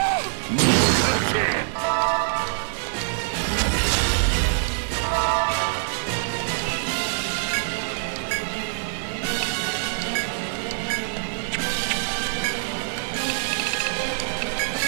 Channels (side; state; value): left; silent; digital silence